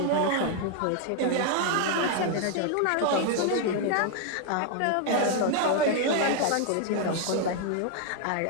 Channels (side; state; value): both; different; correlation 0.00